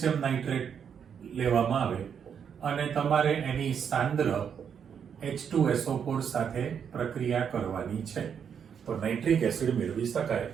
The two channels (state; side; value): quieter; left; 7.6 dB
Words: નાઇટ્રેટ લેવામાં આવે અને તમારે એની સાંદ્ર H2SO4 સાથે પ્રક્રિયા કરવાની છે તો નાઇટ્રિક એસિડ મેળવી શકાય.